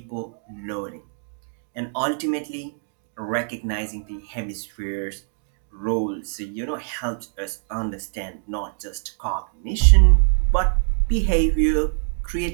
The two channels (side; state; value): left; silent; digital silence